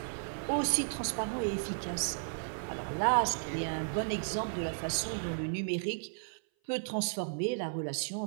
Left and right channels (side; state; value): left; silent; 55 dB below the other